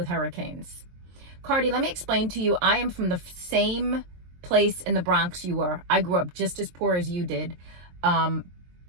hurricanes. Cardi, let me explain to you. I am from the same place in the Bronx you were. I grew up just as poor as you did. I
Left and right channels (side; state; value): left; late; 23 ms